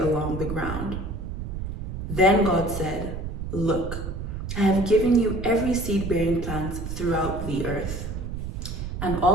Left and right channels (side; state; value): right; noise; rumble, 6 dB below the sound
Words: the ground." Then God said, "Look, I have given you every seed-bearing plant throughout the earth, and